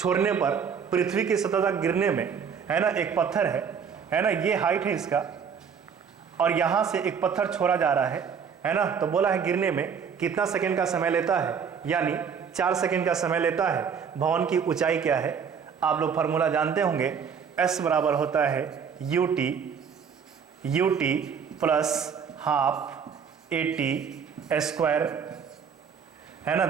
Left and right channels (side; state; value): left; quieter; 6.9 dB